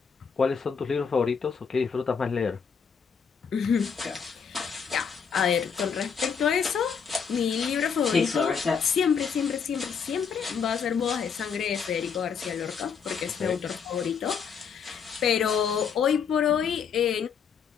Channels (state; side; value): quieter; right; 6.6 dB